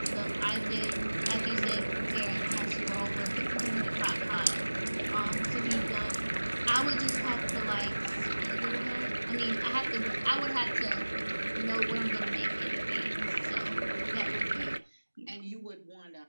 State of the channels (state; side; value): inverted; both; correlation -1.00